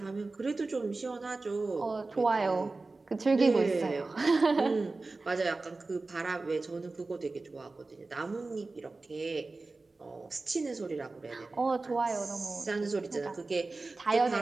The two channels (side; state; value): left; quieter; 3.5 dB